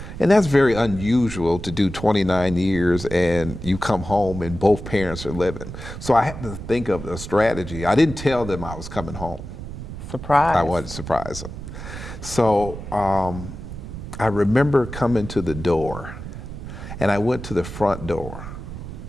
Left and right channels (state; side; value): noise; right; rumble, 10 dB below the sound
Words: And that's very unusual to do 29 years and you come home and both parents are living. So I had to think of a strategy. I didn't tell them I was coming home. Surprise. I wanted to surprise them. So I remember coming to the door and I went to the front door